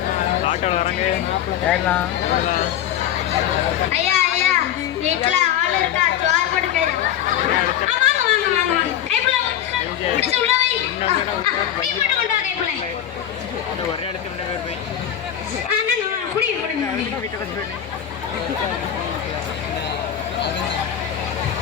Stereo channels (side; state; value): right; quieter; 10.4 dB